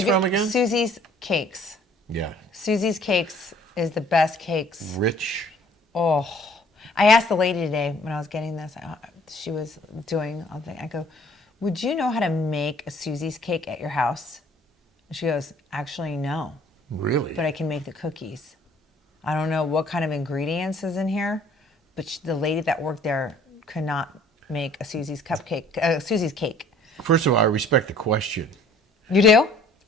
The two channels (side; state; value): both; normal; correlation 0.55